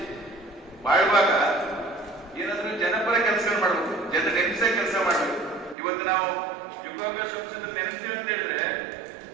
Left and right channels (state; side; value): drops out; left; at 5.8 s